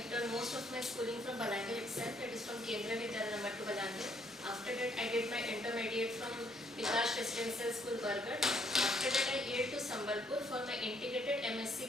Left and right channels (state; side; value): normal; both; correlation 0.68